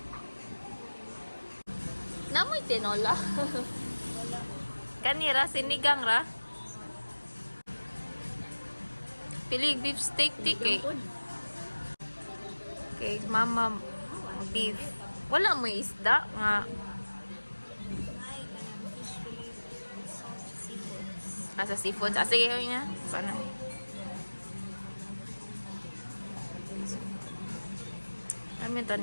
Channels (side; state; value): both; inverted; correlation -1.00